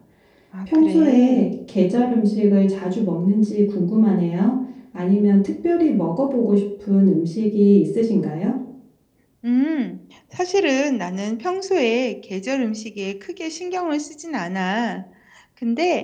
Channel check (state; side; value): identical; both; correlation 1.00